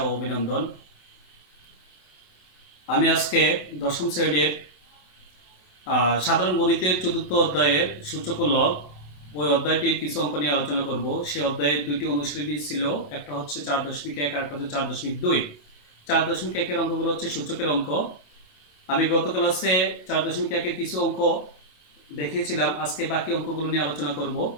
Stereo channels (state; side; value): late; right; 27 ms